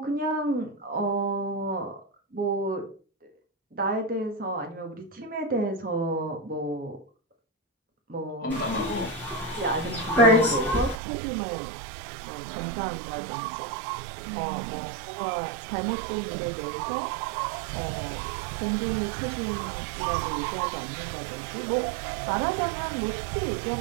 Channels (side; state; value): left; drops out; at 11.0 s